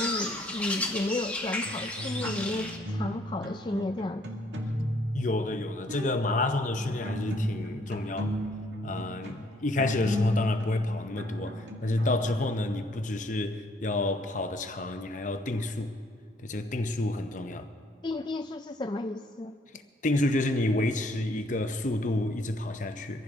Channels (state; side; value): normal; both; correlation 0.65